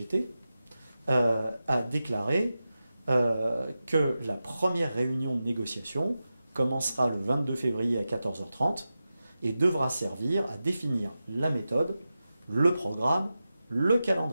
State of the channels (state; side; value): inverted; both; correlation -0.93